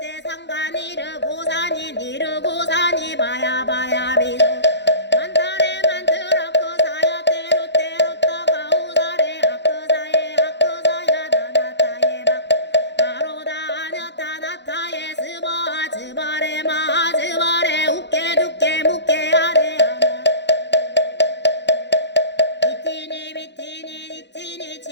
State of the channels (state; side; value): late; right; 0.51 ms